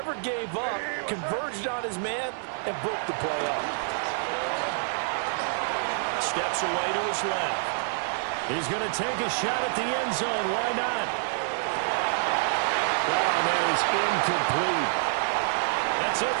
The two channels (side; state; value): left; silent; digital silence